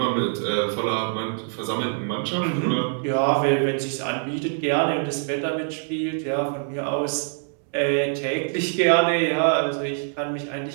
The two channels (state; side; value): silent; left; digital silence